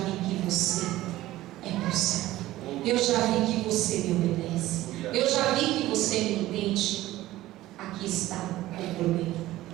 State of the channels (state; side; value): quieter; left; 16.1 dB